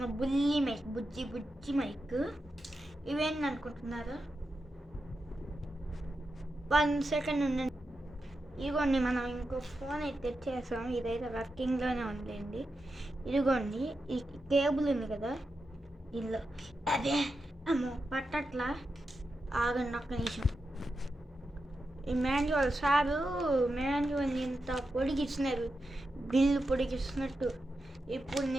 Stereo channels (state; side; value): normal; both; correlation 0.89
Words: బుల్లి మైక్, బుజ్జి మైక్. ఇవేంటి అనుకుంటున్నారా? 1 సెకండ్ ఉండండి. ఇదిగోండి, మనం ఇంకో ఫోన్ అయితే తెచ్చేసాం. ఇదైతే వర్కింగ్లోనే ఉందండి. ఇదిగోండి, ఈ కేబుల్ ఉంది కదా దీనిలో. అదే అమ్మో పట్టట్లా, ఆగండి ఒక్క నిమిషం. ఈ మాన్యువల్ సారు మాన్యువల్ ఇంత పొడిగిస్తున్నారు, బిల్లు పొడిగిస్తున్నట్టు. ఇప్పుడు